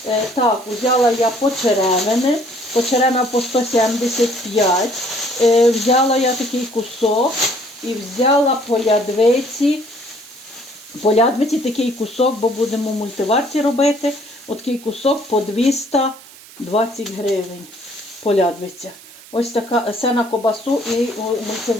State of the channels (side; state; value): right; noise; hiss, 21 dB below the sound